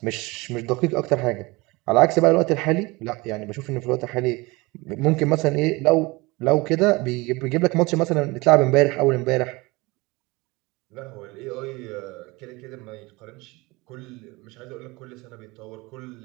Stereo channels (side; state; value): left; quieter; 23.6 dB